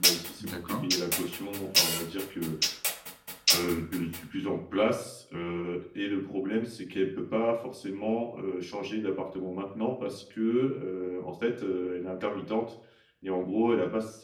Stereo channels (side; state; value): both; identical; correlation 1.00